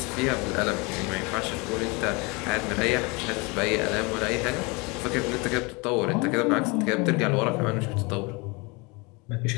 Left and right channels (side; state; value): right; quieter; 27.6 dB